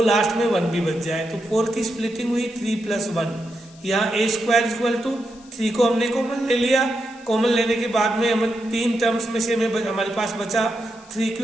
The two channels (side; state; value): left; noise; hiss, 25 dB below the sound